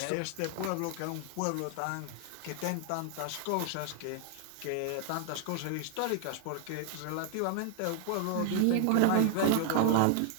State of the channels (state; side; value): different; both; correlation 0.00